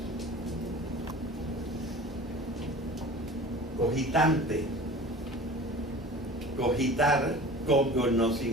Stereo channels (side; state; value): both; normal; correlation 0.40